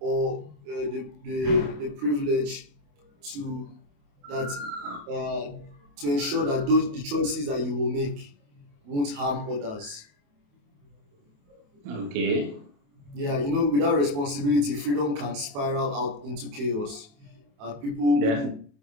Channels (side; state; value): left; late; 28 ms